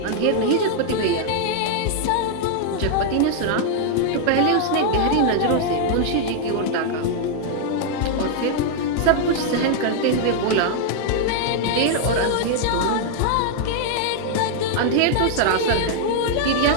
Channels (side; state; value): both; different; correlation 0.00